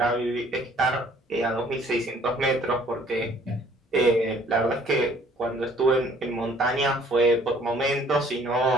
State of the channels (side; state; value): both; normal; correlation 0.58